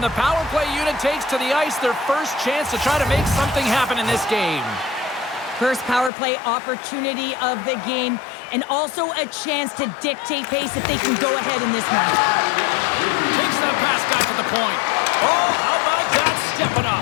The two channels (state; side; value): drops out; right; at 6.1 s